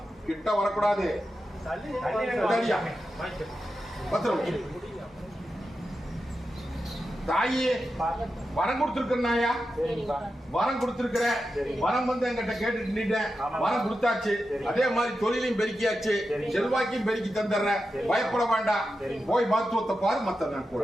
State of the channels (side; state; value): both; normal; correlation 0.90